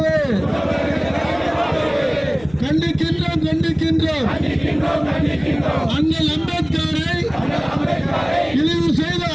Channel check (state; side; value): noise; left; rumble, 23 dB below the sound